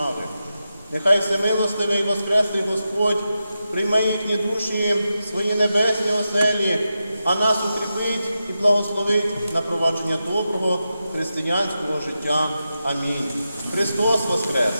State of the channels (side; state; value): both; inverted; correlation -0.90